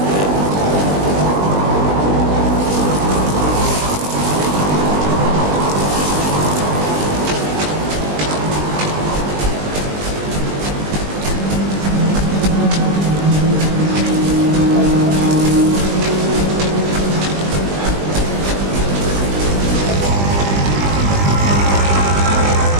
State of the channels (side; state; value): left; late; 20 ms